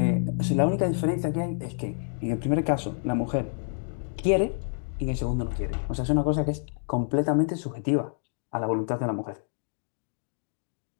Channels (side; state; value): right; silent; digital silence